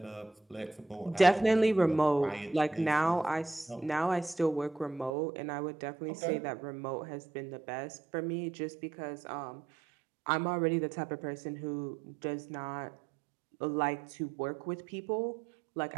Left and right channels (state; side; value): drops out; left; at 5.1 s